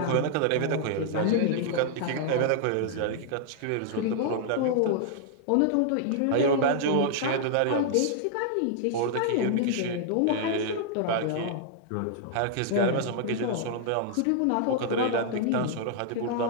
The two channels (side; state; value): both; different; correlation -0.01